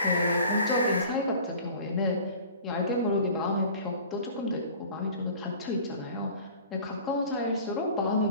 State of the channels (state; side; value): inverted; both; correlation -0.44